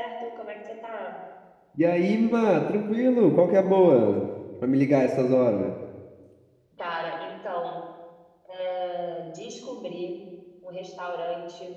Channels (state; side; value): identical; both; correlation 1.00